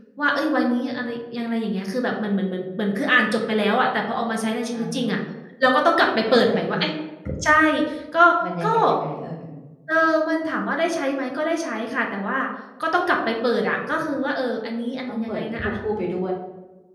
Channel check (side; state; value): both; identical; correlation 1.00